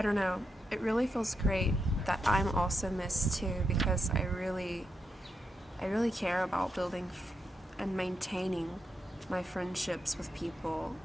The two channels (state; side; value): normal; both; correlation 0.84